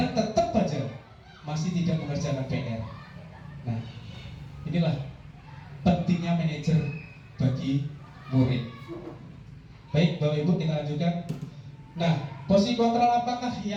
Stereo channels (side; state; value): both; identical; correlation 1.00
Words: tetap aja masih tidak mengerjakan PR. Nah, inilah pentingnya manajer bagi murid. Baik, Bapak Ibu, kita lanjutkan. Nah, posisi kontrol apakah